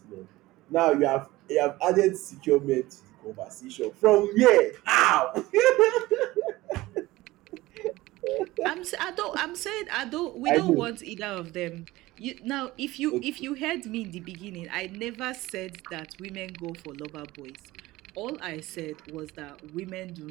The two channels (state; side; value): quieter; left; 18.6 dB